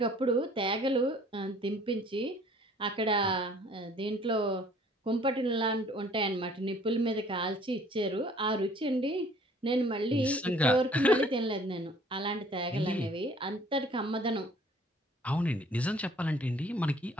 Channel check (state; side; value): normal; both; correlation 0.55